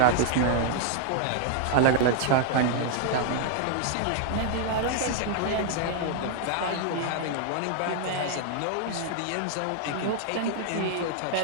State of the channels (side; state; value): both; different; correlation 0.00